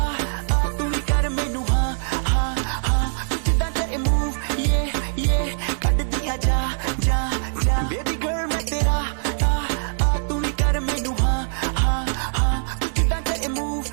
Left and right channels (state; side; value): silent; left; digital silence